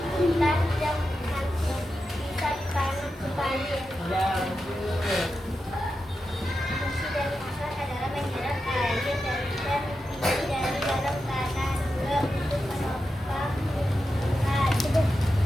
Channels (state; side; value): normal; both; correlation 0.89